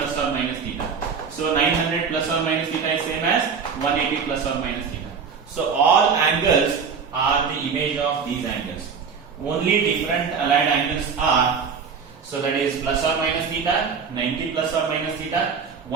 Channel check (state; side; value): quieter; left; 6.0 dB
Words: or minus theta. So 900 plus or minus theta is same as 180 plus or minus theta. So all angles are the image of these angles. Only different allied angles are, so that is plus or minus theta, 90 plus or minus theta,